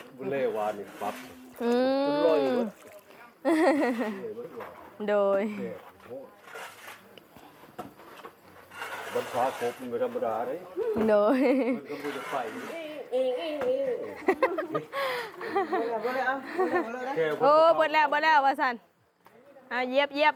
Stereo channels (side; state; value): both; identical; correlation 1.00